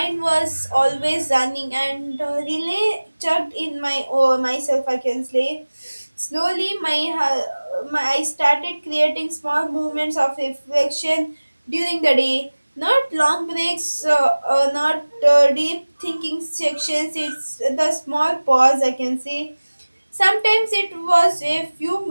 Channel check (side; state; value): both; inverted; correlation -1.00